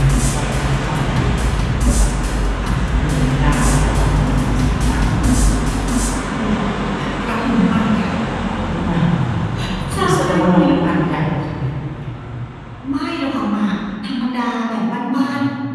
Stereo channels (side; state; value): both; identical; correlation 1.00